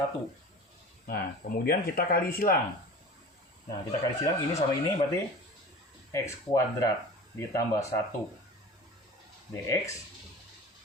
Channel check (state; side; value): normal; both; correlation 0.37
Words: Nah, kemudian kita kali silang. Nah, kita kali silang ini sama ini berarti x kuadrat ditambah 1 dx